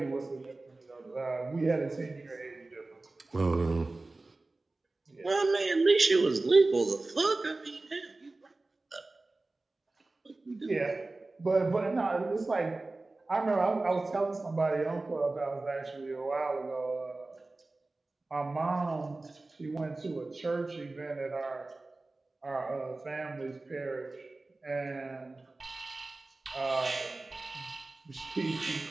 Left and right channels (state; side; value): quieter; left; 3.2 dB